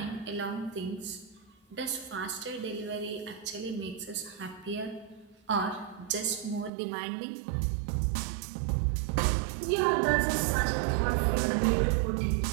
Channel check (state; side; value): drops out; left; at 6.7 s